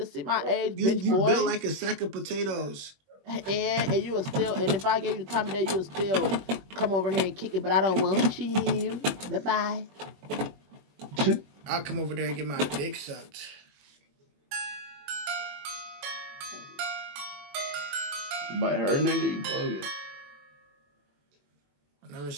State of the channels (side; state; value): left; late; 21 ms